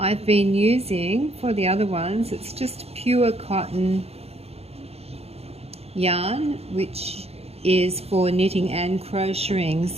been using, for the other ones, it's just pure cotton yarn, which is for knitting and crocheting.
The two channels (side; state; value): left; late; 0.29 ms